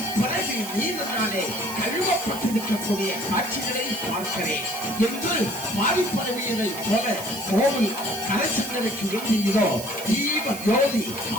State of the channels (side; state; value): right; noise; hiss, 11 dB below the sound